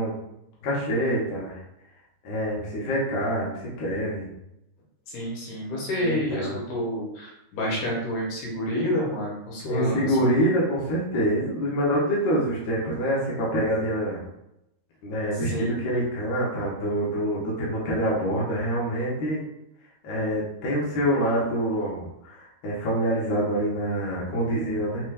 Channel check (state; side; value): late; right; 13 ms